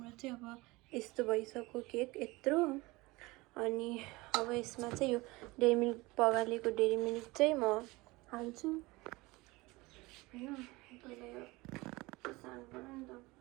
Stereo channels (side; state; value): left; quieter; 22.2 dB